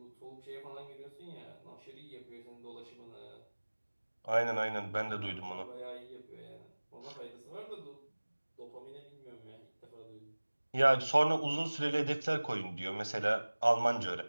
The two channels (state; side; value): inverted; both; correlation -1.00